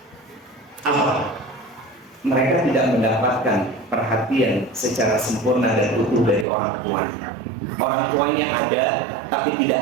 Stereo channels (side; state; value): left; drops out; at 6.5 s